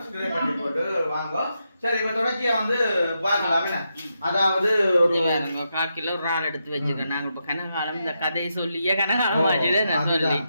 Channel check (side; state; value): both; inverted; correlation -0.84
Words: பண்ணி போட்டு வாங்க. சரி இப்ப தொடர்ச்சியா வந்து பார்க்கலாம். அதாவது ஒரு 1/4 கிலோ இறால் எடுத்து வச்சுக்கோங்க. நாங்க இப்ப கனகாலம் இந்த கதையை சொல்லியே கனகாலம் ஆச்சுல நான் சொல்லி.